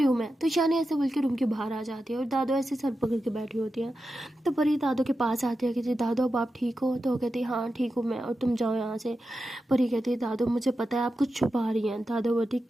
हूँ मैं। तो ईशानी ऐसे बोल के रूम के बाहर आ जाती है और दादू ऐसे सर पकड़ के बैठी होती है। तो परी दादू के पास आती है, कहती दादू अब आप ठीक हो। तो वो कहती हाँ ठीक हूँ मैं और तुम जाओ यहाँ से। परी कहती दादू मुझे पता है आप कुछ छुपा रही हैं। दादू बोलती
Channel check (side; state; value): both; normal; correlation 0.90